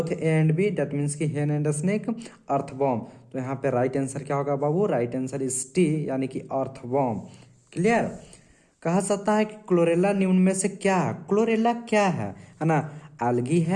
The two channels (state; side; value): identical; both; correlation 1.00